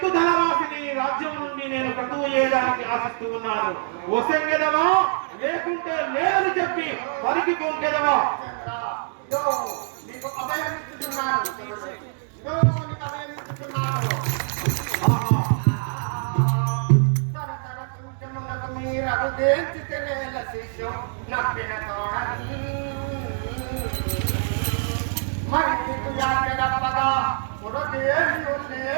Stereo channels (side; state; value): left; silent; digital silence